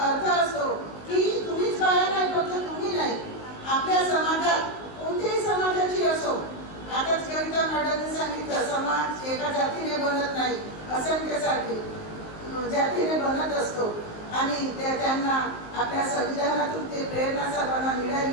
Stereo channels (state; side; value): late; right; 19 ms